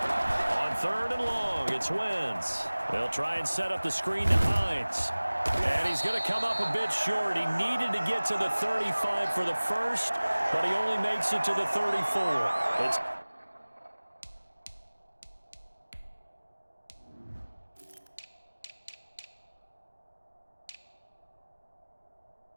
Third and long, it's Wentz. They'll try and set up the screen to Hines. And he's going to come up a bit short. He needed to get to the 35 for the first, but he only makes it to the 34. It's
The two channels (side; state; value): both; inverted; correlation -1.00